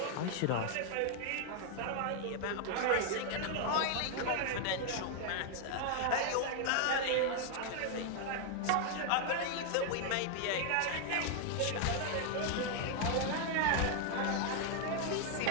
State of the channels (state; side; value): different; both; correlation 0.00